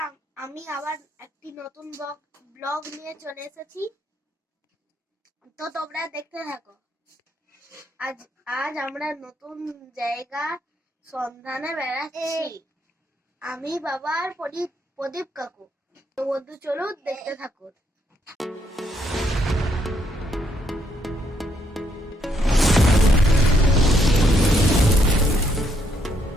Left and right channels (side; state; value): both; normal; correlation 0.73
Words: আমি আবার একটি নতুন ব্লগ নিয়ে চলে এসেছি, তো তোমরা দেখতে থাকো। আজ আমরা নতুন জায়গা সন্ধানে বেড়াচ্ছি, আমি বাবা আর প্রদীপ কাকু। তো বন্ধু চলো দেখতে থাকো।